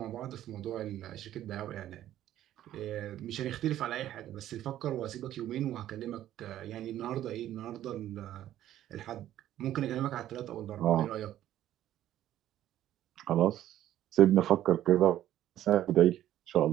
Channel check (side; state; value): left; quieter; 12.6 dB